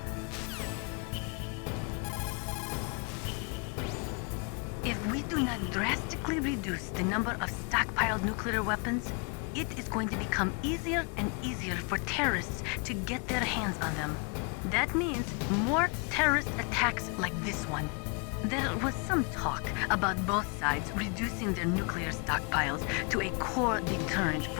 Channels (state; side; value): quieter; right; 34.2 dB